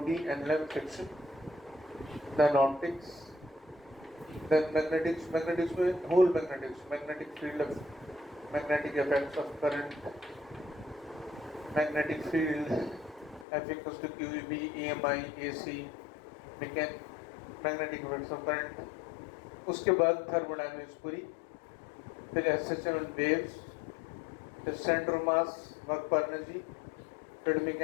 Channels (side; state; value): right; drops out; at 13.5 s